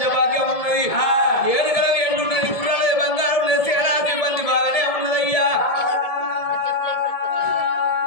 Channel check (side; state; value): right; late; 1.7 ms